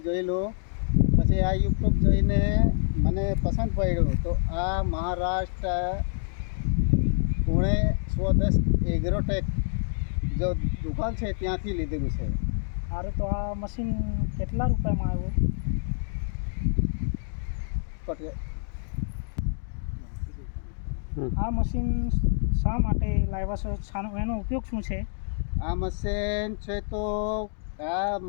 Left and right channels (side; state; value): right; silent; digital silence